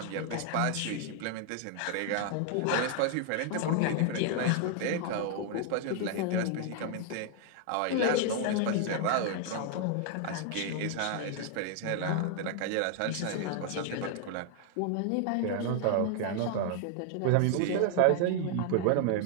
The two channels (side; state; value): both; different; correlation 0.00